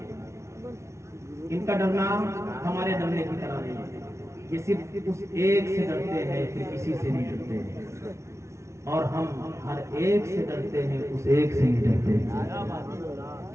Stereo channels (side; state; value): left; late; 0.13 ms